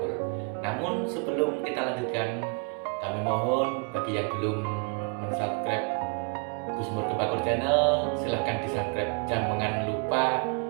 Namun sebelum kita lanjutkan, kami mohon bagi yang belum subscribe Gusmur Kebakur Channel, silahkan di subscribe, jangan lupa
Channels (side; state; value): left; quieter; 36.6 dB